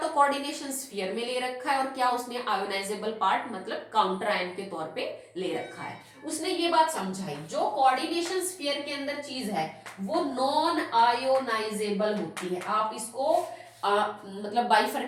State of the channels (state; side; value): identical; both; correlation 1.00